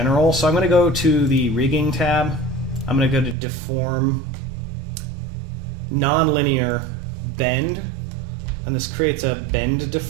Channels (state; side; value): drops out; left; at 3.4 s